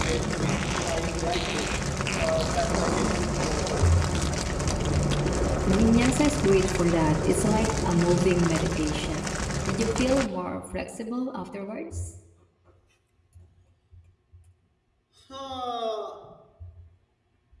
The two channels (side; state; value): both; identical; correlation 1.00